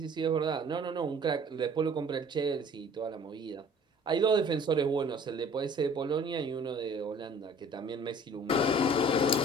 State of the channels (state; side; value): normal; both; correlation 0.51